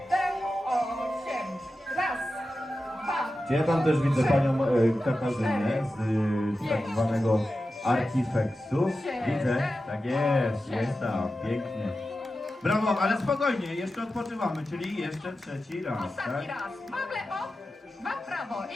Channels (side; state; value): both; normal; correlation 0.92